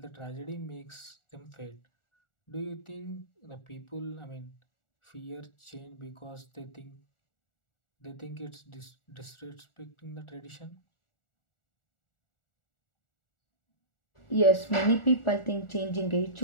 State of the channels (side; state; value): right; late; 1.4 ms